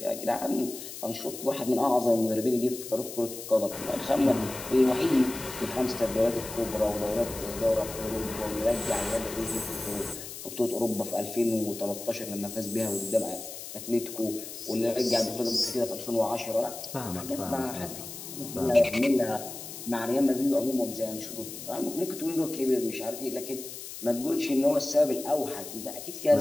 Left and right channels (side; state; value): left; noise; hiss, 11 dB below the sound